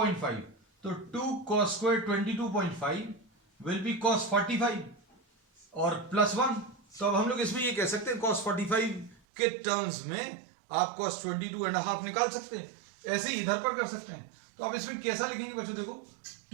तो 2 cos square 22.5 will be cos 45 और प्लस 1. तो अब हम लोग इसमें ये कह सकते हैं cos 45 के टर्म्स में आप cos 22.5 निकाल सकते हैं. ऐसे ही इधर पर कर सकते हैं. तो अब इसमें कैसा लिखेंगे बच्चों. देखो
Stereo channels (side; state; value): left; drops out; at 9.2 s